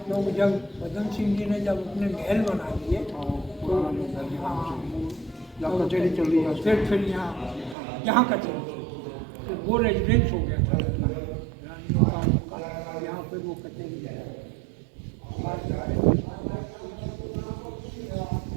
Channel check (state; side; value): drops out; left; at 7.8 s